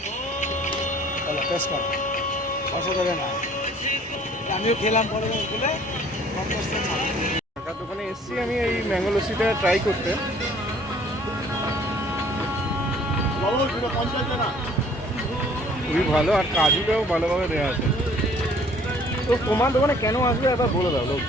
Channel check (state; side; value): normal; both; correlation 0.56